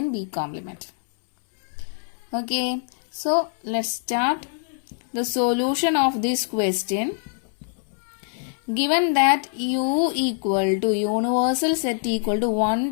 B complement. Okay, so let's start the solution of this question. Given that U equal to universal set equal to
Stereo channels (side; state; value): right; silent; 60 dB below the other